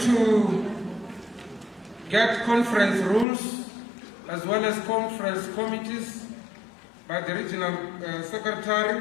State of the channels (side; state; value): right; drops out; at 3.2 s